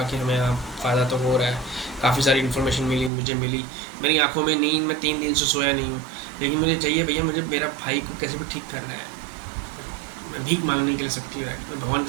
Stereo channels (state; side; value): drops out; left; at 3.1 s